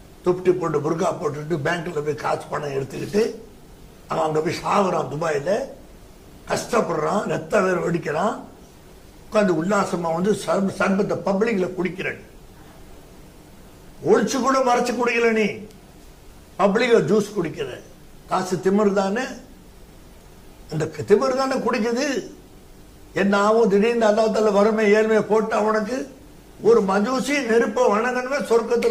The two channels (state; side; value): identical; both; correlation 1.00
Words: துப்டி போட்டு புர்கா போட்டுட்டு பேங்க்ல போய் காசு பணம் எடுத்துக்கிட்டு அவன் அங்க போய் சாகுறான், துபாயில கஷ்டப்படுறான், ரத்த வேற வெடிக்கிறான், உட்காந்து உல்லாசமா வந்து சர்பத்தை பப்ளிக்ல குடிக்கிறேன், ஒழிச்சு கூட மறைச்சு குடிக்கல, நீ பப்ளிக்ல ஜூஸ் குடிக்கிற, காசு திமிரு தானே, இந்த திமிரு தானே குடிக்குது. என்ன ஆகும், திடீர்னு அல்லாஹ் வறுமை ஏழ்மையை போட்டா உனக்கு. ஒரு மஜூசி நெருப்ப வணங்கணுமே